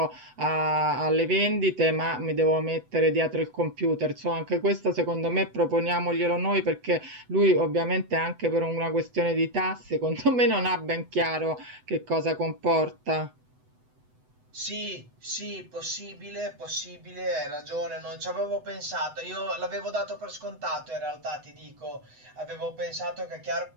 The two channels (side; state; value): left; late; 8.0 ms